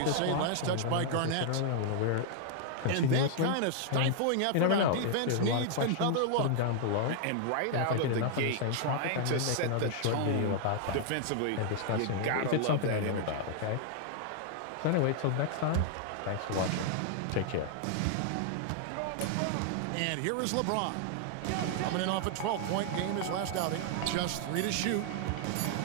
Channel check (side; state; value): both; different; correlation 0.00